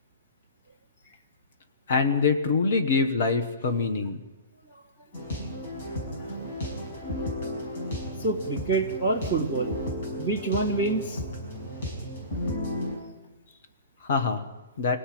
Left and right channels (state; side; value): inverted; both; correlation -0.34